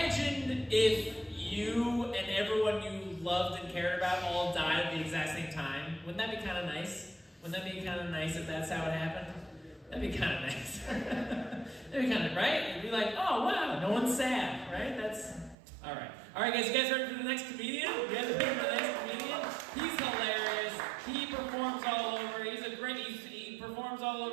if you and everyone you loved and cared about all died at the exact same time. Wouldn't that be kind of nice? Wouldn't that be kind of nice if that's how it happened? That'd be kind of nice. That'd be kind of, right? It'd be like, oh wow, no one's sad, right? That's, all right. All right, guys, you guys ready for the next comedian? You guys ready for the next comedian? He's hilarious. He performs all over. He's a great, he performs all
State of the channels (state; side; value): drops out; left; at 15.6 s